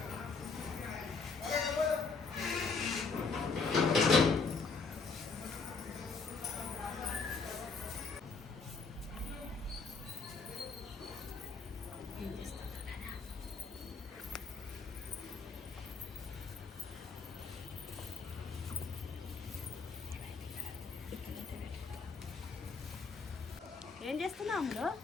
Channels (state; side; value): quieter; right; 4.6 dB